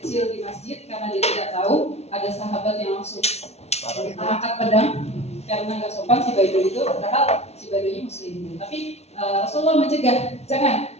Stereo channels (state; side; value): late; right; 0.31 ms